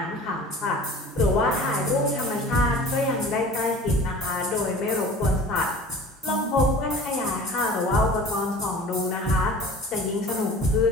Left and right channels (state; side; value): normal; both; correlation 0.42